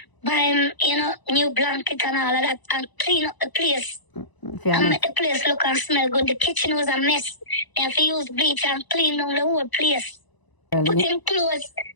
buy him, new blanket and all of that, and clean up the place. And make the place look and smell good. The kitchen was a mess. They have to use bleach and clean down the whole place. Put him clothes.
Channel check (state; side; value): late; right; 1.0 ms